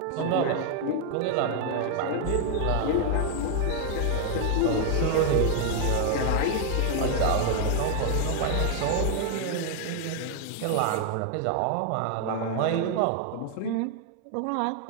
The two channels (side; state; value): both; different; correlation 0.00